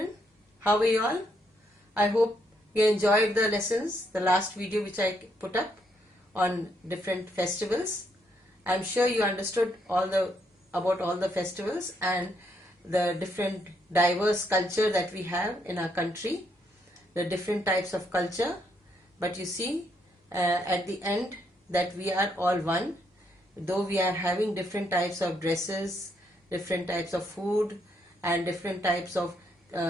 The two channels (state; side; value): normal; both; correlation 0.75